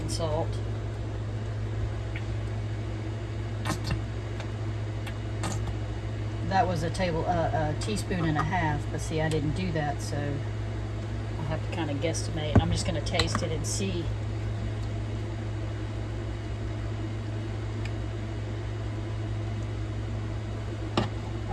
salt, that was a teaspoon and a half, but see, I didn't do that, so I'll have to kind of guesstimate. I'm just going to taste it and see.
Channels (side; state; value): both; identical; correlation 1.00